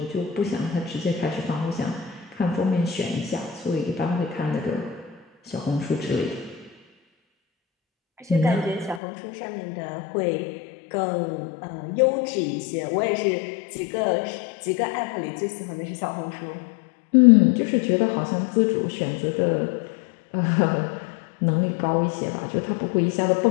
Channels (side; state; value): right; drops out; at 9.0 s